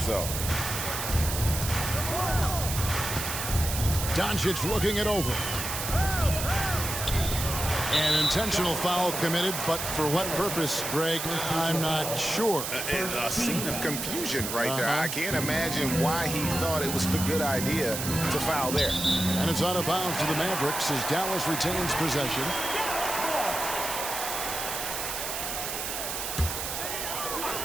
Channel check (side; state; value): right; noise; hiss, 4 dB below the sound